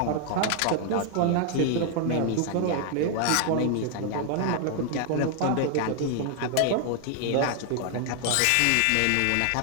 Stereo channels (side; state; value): both; different; correlation 0.00